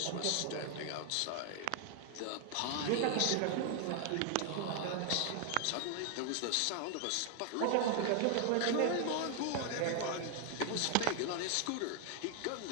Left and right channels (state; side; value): different; both; correlation 0.00